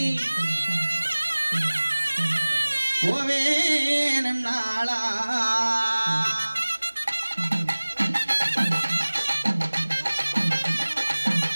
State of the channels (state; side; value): inverted; both; correlation -1.00